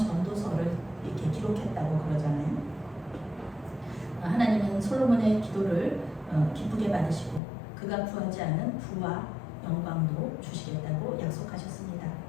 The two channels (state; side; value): drops out; right; at 7.4 s